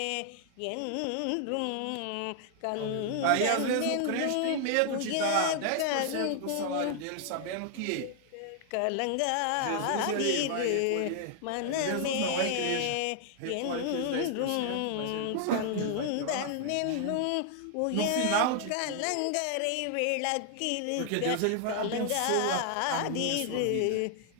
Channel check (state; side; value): different; both; correlation 0.00